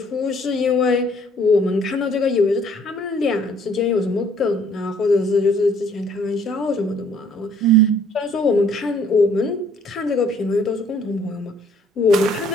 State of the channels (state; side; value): normal; both; correlation 0.61